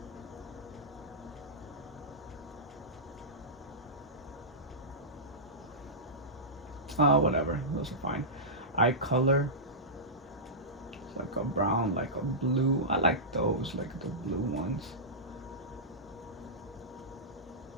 Whatever. Those are fine. Eye color. It's like a brown, like a blue. I like those, like the blue ones.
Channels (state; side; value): normal; both; correlation -0.16